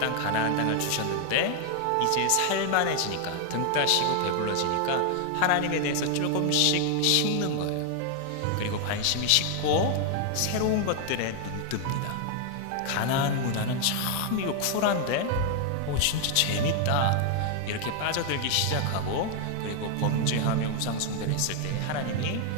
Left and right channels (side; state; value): both; different; correlation 0.00